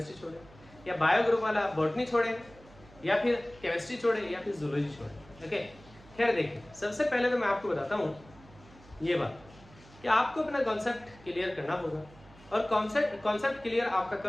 छोड़ें, या बायो ग्रुप वाला बॉटनी छोड़ें, या फिर केमिस्ट्री छोड़ें, या फिर जूलॉजी छोड़ें, ओके। खैर देखिए, सबसे पहले तो मैं आपको बताता हूँ ये बात कि आपको अपना कॉन्सेप्ट क्लियर करना होगा, और कॉन्सेप्ट क्लियर आपका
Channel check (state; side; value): noise; right; hum, 23 dB below the sound